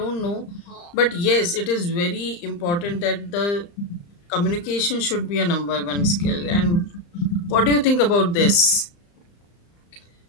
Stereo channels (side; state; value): right; late; 35 ms